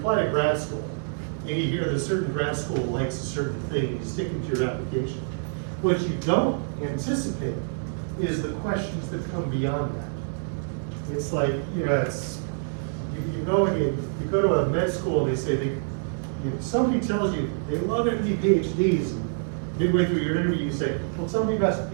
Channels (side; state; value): left; silent; digital silence